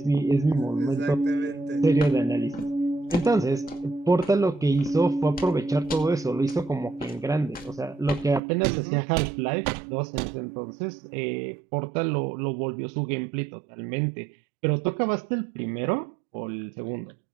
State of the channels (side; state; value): left; drops out; at 8.4 s